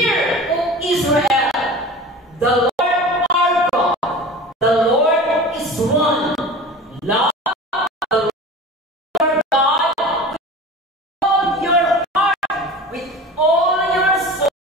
O Israel, the Lord our God, the Lord is one. Love the Lord God with all your heart, with all your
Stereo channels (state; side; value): normal; both; correlation 0.36